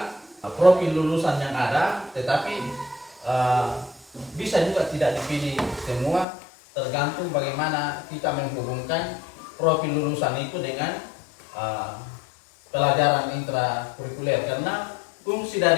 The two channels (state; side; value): drops out; right; at 6.2 s